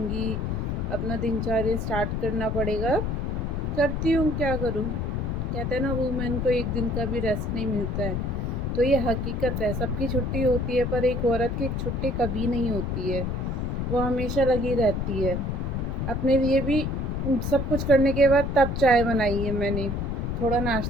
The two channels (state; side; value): noise; left; rumble, 1 dB below the sound